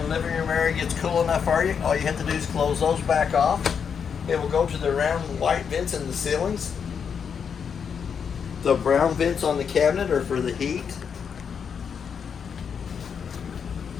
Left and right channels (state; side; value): quieter; right; 6.9 dB